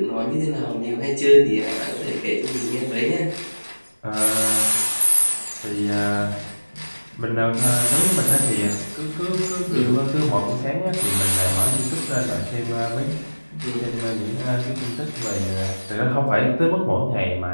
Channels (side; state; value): both; inverted; correlation -1.00